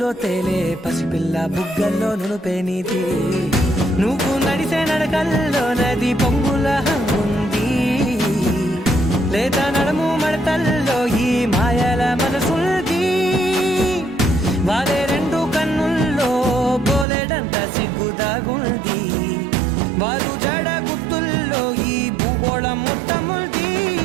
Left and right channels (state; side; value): drops out; left; at 17.1 s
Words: తేలే పసిపిల్ల బుగ్గల్లో నునుపే నీతి నువ్వు నడిసే నడకల్లో నది పొంగుల హంగుంది లేదా నడుము మడతల్లో ఈ మాయల మనసుంది వారే రెండు కన్నుల్లో బోలెడంత సిగ్గుదాగుంది వారు జడ గుత్తుల్లో ఈ భూగోళం మొత్తముంది